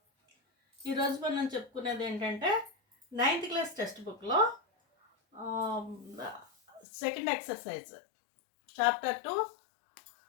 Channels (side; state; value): right; drops out; at 6.9 s